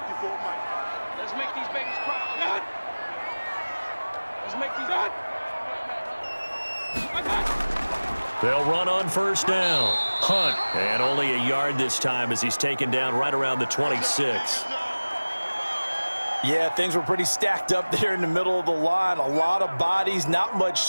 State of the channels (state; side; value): inverted; both; correlation -1.00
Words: Let's make these babies cry. Let's make these They'll run on first down. Hunt, and only a yard this time as he's taken down right around the 26. Yeah, things were pretty stacked up there in the middle of the line. A lot of bodies, not much